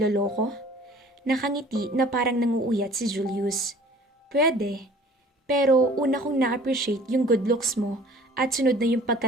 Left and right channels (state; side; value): normal; both; correlation 0.50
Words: Nakangiti na parang nanguuyat si Julius. Pwede. Pero una kong na-appreciate yung good looks mo at sunod na yung